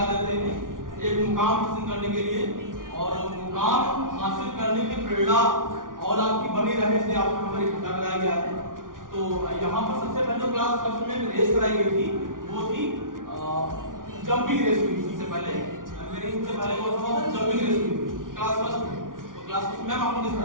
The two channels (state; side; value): late; left; 0.89 ms